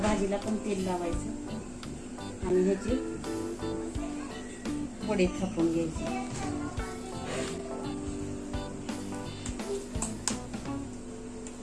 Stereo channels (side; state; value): both; identical; correlation 1.00